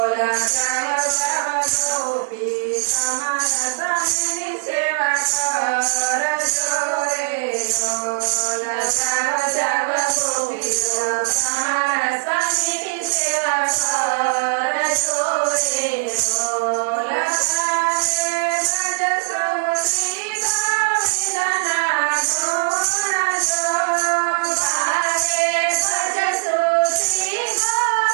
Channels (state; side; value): silent; left; digital silence